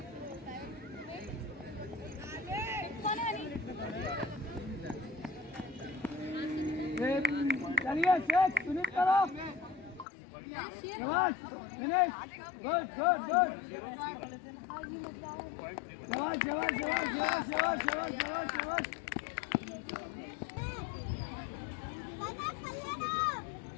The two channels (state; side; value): drops out; right; at 10.1 s